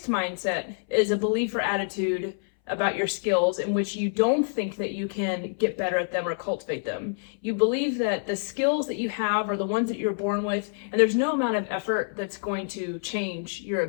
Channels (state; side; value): silent; right; 60 dB below the other